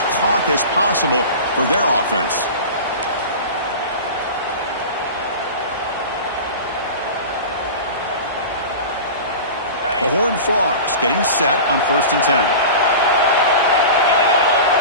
clock as possible for their offense. The Horned Frogs getting set on 1st and 10.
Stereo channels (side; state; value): both; inverted; correlation -0.32